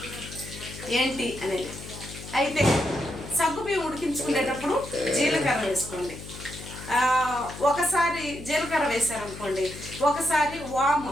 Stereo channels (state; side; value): noise; left; hum, 13 dB below the sound